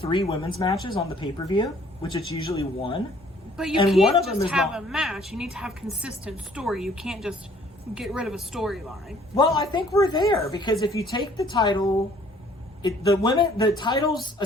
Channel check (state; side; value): normal; both; correlation 0.58